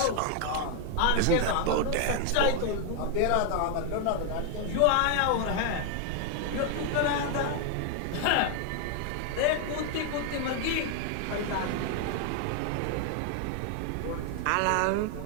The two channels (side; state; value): both; different; correlation 0.00